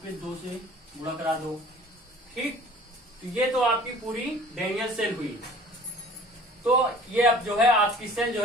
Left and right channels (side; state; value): both; normal; correlation 0.48